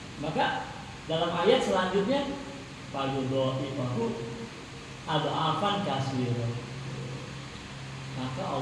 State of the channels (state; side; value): identical; both; correlation 1.00